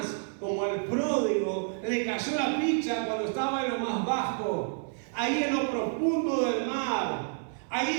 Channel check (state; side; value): silent; left; 58 dB below the other